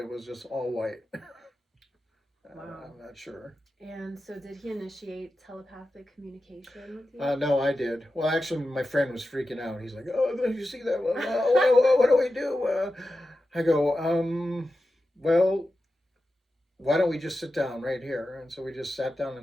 was just all white. wow. I'm not sure. And so did he initiate telepathic communication with you? No, I did. Well, actually, my friend was freaking out. He's like, "Oh, did you see that? What do we do? I go, well, why don't we just sit down right here? And so we just sat down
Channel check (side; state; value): both; normal; correlation 0.92